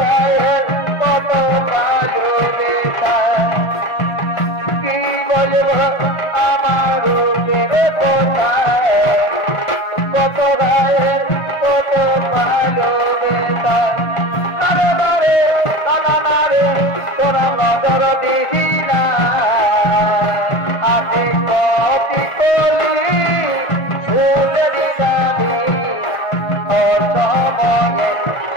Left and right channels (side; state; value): right; late; 1.5 ms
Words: কত ভালোবাসা কি বলবো আমার কোথায় কত ভাইয়ের কত ভালোবাসা তারে বারে তামারে তোরা নজর দিদি না আতে কপি কলি শুনে দিবি ওর সময়ে